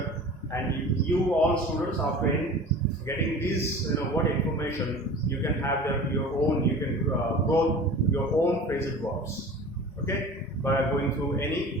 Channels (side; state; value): both; normal; correlation 0.38